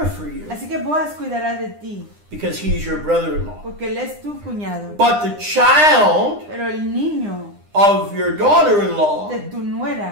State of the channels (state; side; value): late; left; 9.8 ms